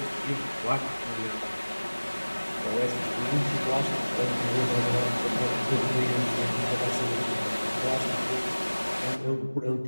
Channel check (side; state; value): both; inverted; correlation -1.00